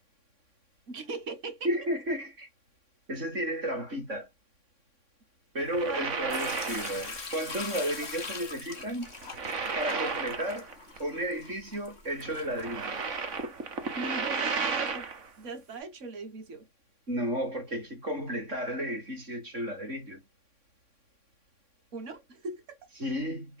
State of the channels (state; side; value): late; left; 3.6 ms